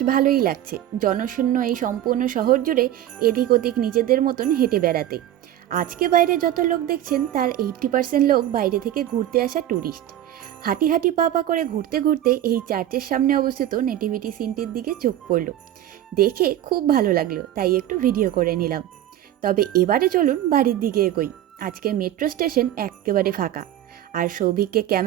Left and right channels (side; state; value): left; quieter; 12.4 dB